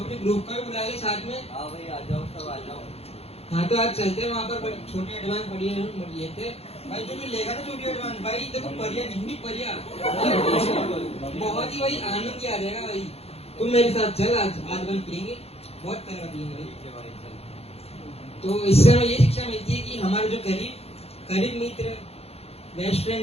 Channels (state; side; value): late; right; 0.29 ms